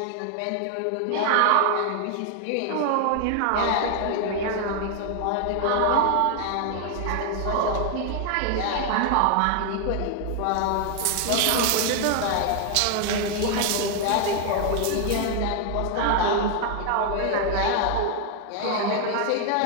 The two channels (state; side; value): different; both; correlation 0.00